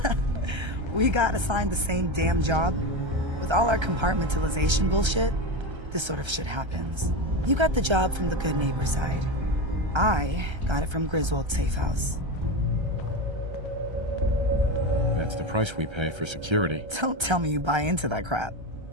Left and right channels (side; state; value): left; late; 1.3 ms